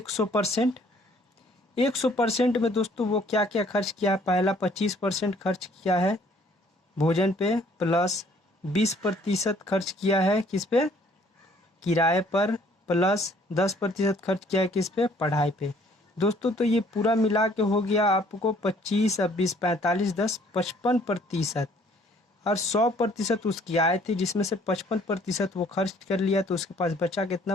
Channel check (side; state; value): both; normal; correlation 0.59